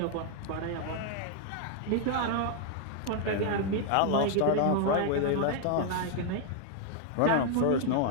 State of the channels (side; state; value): both; different; correlation 0.00